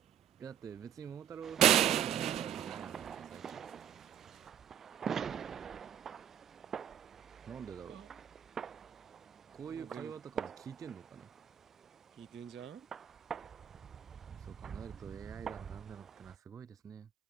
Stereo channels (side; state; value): left; quieter; 10.1 dB